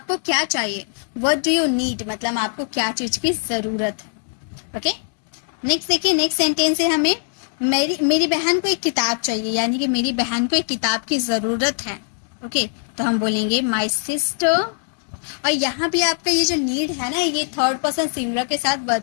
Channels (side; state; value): right; silent; digital silence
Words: क्या चाहिए, व्हाट डू यू नीड, मतलब आपको क्या चीज की जरूरत है. ओके, नेक्स्ट देखिए, नेक्स्ट सेंटेंस है हमें मेरी बहन को एक किताब चाहिए, यानी कि मेरी बहन को एक किताब की जरूरत है. ओके, तो हम बोलेंगे माई सिस्टर. और यहाँ भी आपका ये जो नीड है ना, ये थर्ड पर्सन सिंगुलर के साथ वर्ब